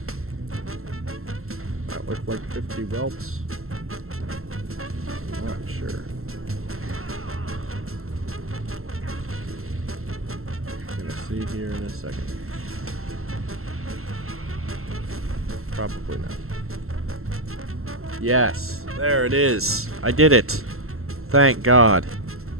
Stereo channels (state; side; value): late; left; 0.62 ms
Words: That looked like 50 whelps. Not sure. Gonna see here in a second. Probably not. Yes, there it is. I did it. Thank God.